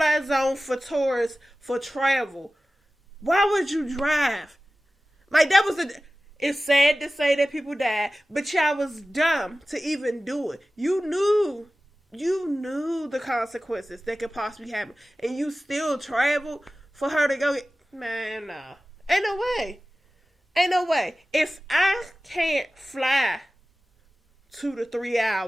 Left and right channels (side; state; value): both; normal; correlation 0.96